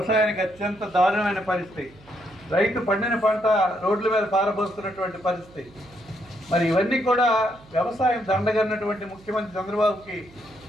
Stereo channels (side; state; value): right; noise; hum, 25 dB below the sound